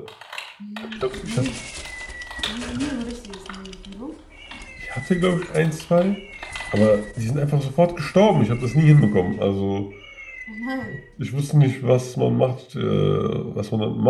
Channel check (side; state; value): both; identical; correlation 1.00